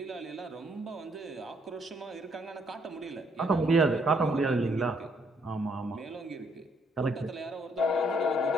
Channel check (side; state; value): both; normal; correlation 0.70